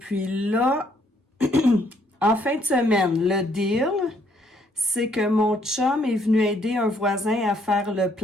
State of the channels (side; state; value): both; normal; correlation 0.68